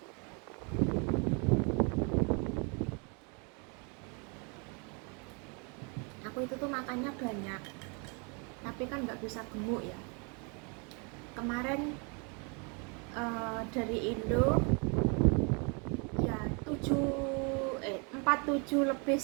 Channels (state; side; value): quieter; left; 33.1 dB